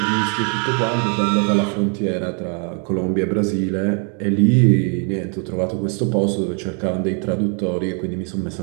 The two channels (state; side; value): quieter; left; 39.9 dB